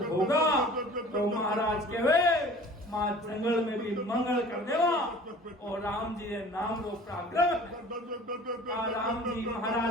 होगा तो महाराज कहे माँ जंगल में भी मंगल कर देवा और राम जी के नाम रो पराक्रम राम जी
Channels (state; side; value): normal; both; correlation 0.46